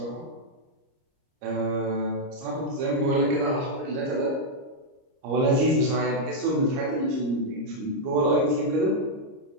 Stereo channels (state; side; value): late; left; 30 ms